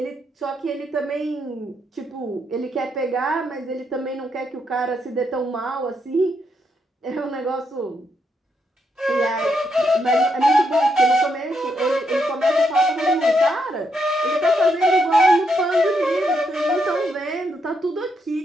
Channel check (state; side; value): normal; both; correlation 0.79